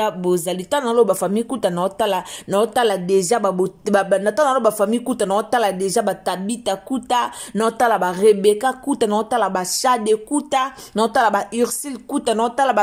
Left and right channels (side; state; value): both; identical; correlation 1.00